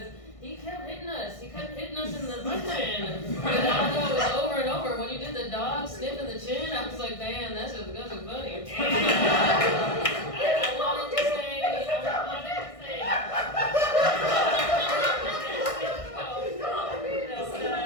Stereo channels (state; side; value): late; right; 1.6 ms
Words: he kept hitting us. He kept hitting us in the chin. And I know it was over and over. When you did the dog sniffing the chin, I was like, damn, that's funny. I wanted to say.